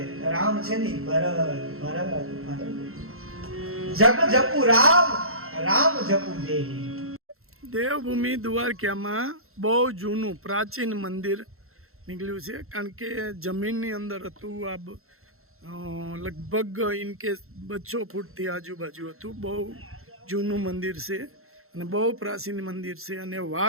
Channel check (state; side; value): late; left; 0.62 ms